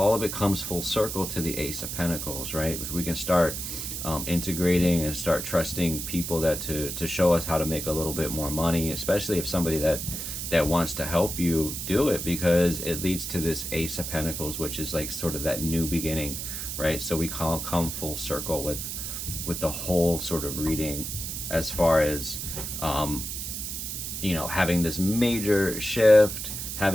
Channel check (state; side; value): noise; right; hiss, 5 dB below the sound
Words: of it comes full circle to the Ace of Pentacles, right? If we can start integrating and start trusting people that to show us how to make a little bit more money, especially if somebody that wants to help you do it, because it leads to this Ace of Pentacles, which is like sort of that new beginning, right? So we come full circle with the whole sort of reading, as far as having this major shift,